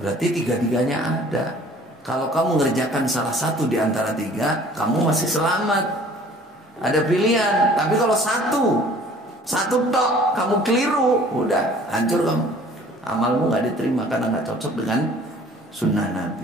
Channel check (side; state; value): both; normal; correlation 0.51